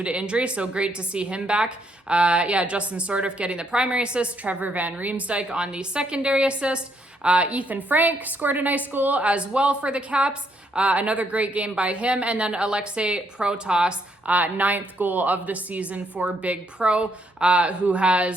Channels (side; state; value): both; normal; correlation 0.73